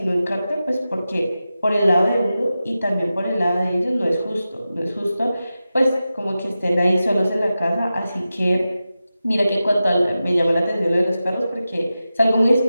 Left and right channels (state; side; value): inverted; both; correlation -0.93